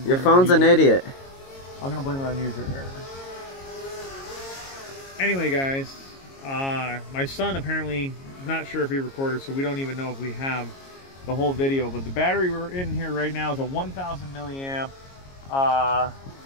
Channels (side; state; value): right; late; 22 ms